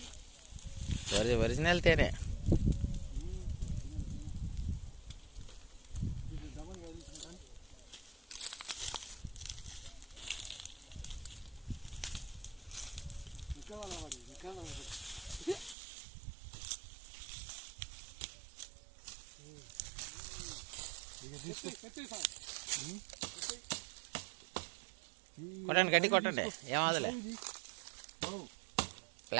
ఒరిజినల్ తేనే. కొట్టండి, గడ్డి కొట్టండి, ఏమవదులే.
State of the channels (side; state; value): left; drops out; at 15.8 s